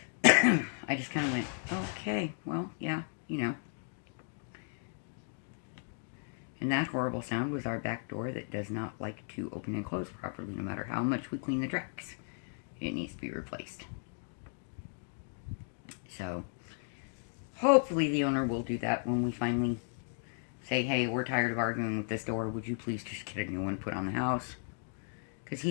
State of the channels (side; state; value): right; silent; 54 dB below the other